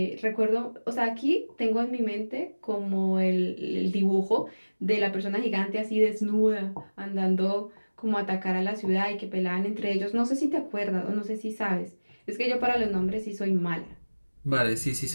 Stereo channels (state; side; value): inverted; both; correlation -1.00